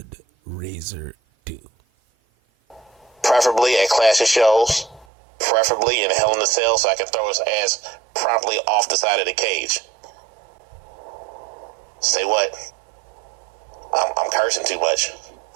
Razor do? Preferably at Clash of Shows, preferably in Hell in a Cell, so I can throw his ass promptly off the side of the cage. Say what? I'm cursing too much.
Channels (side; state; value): left; drops out; at 5.1 s